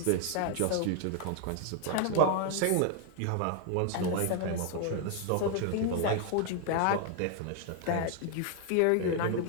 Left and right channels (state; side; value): different; both; correlation 0.00